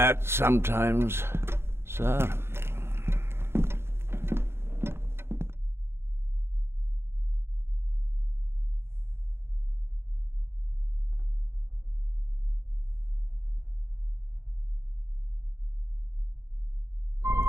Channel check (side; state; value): left; late; 0.12 ms